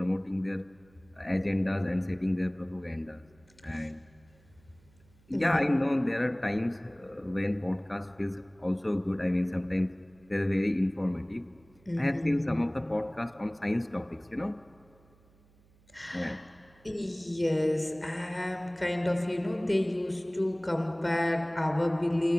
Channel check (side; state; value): right; noise; hum, 30 dB below the sound